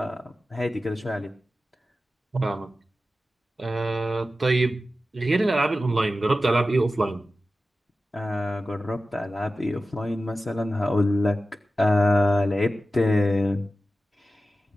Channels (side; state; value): both; normal; correlation 0.94